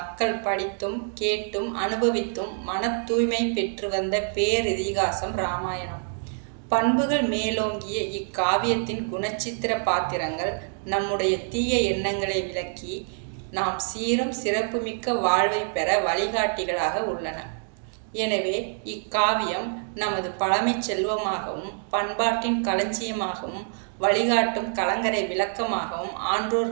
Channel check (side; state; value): left; silent; 61 dB below the other